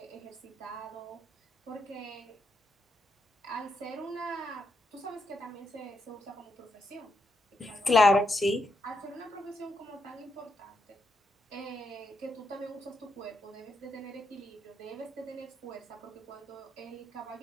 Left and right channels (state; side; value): normal; both; correlation 0.82